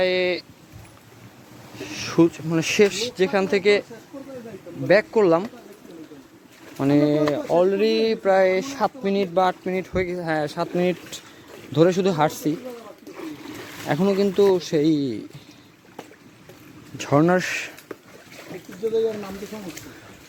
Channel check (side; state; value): both; identical; correlation 1.00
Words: মানে শেষ যেখান থেকে ব্যাক করলাম, মানে অলরেডি প্রায় 7 মিনিট বা 8 মিনিট হয়ে গেছে। হ্যাঁ, 7 মিনিট ধরে শুধু হাঁটছি, এখনও কিন্তু সেই ঝর্ণার